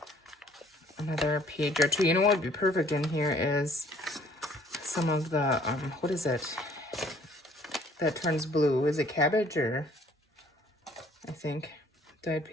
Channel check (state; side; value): normal; both; correlation 0.58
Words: page or two. You know what would be perfect in here is some of the, what is it that turns blue? Is it cabbage or, I think, dyed